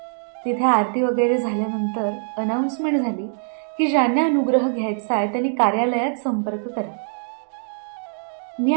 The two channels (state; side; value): silent; left; digital silence